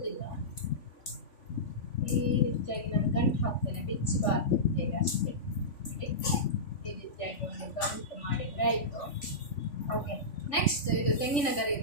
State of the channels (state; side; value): late; right; 3.5 ms